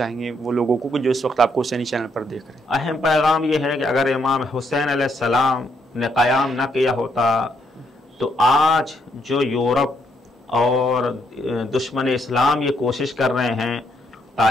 گے وہ لوگوں کو جو اس وقت آپ کو حسینی چینل پر دیکھ رہے ہیں؟ اہم پیغام یہ ہے کہ اگر امام حسین علیہ السلام نے قیام نہ کیا ہوتا تو آج جو یورپ اور دشمن اسلام یہ کوشش کر رہے ہیں،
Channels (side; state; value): both; normal; correlation 0.74